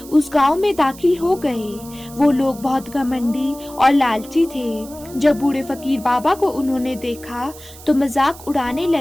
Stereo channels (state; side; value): noise; right; hiss, 18 dB below the sound